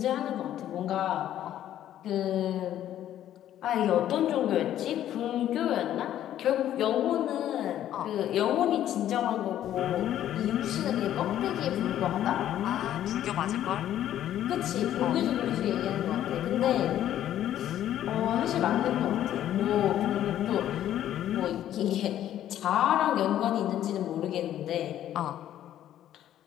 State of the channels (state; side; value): quieter; right; 11.7 dB